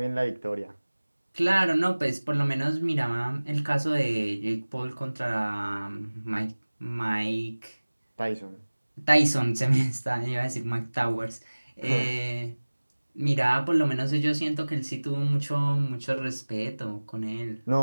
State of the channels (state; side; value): inverted; both; correlation -1.00